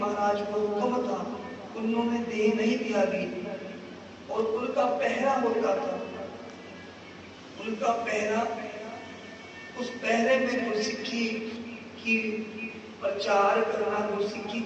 को हुक्म था, उन्होंने देह नहीं त्यागी और उनका पहरा होता था। उनका पहरा, उस पहरे में गुरसिक्खी की प्रचार करना, गुरसिक्खी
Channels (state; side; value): identical; both; correlation 1.00